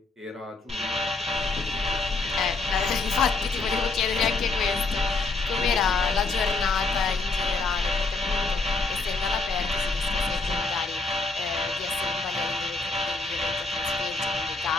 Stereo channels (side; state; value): right; quieter; 3.6 dB